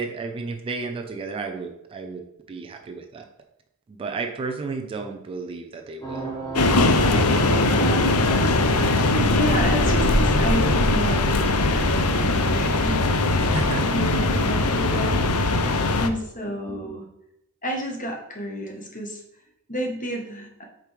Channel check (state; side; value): normal; both; correlation 0.30